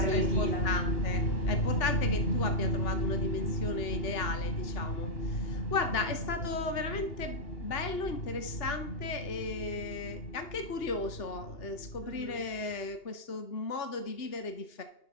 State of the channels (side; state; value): right; late; 2.8 ms